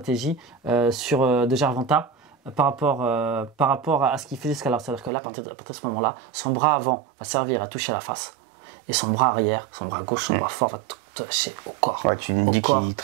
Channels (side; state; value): left; drops out; at 5.1 s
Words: de Gervonta par rapport à ce qu'il faisait jusqu'à l'heure. C'est-à-dire que là, à partir de ce moment-là, son bras avant va servir à toucher la face. Et son bras arrière, son bras gauche, son bras fort va toucher au corps. Ouais, tu me dis qu'il